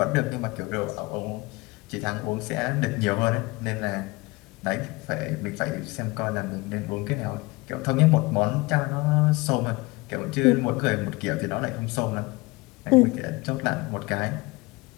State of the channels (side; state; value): right; quieter; 23.6 dB